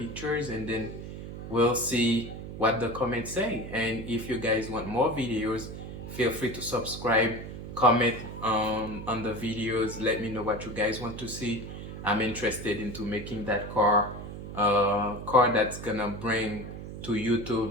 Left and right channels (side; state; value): right; noise; hum, 10 dB below the sound